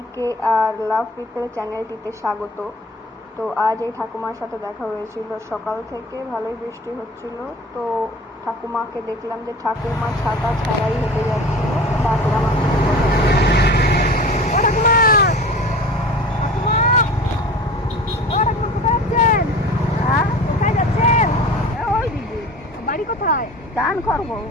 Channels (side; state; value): both; normal; correlation 0.39